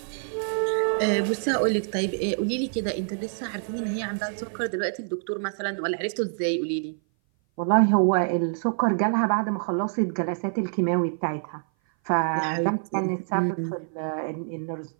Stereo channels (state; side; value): silent; left; 57 dB below the other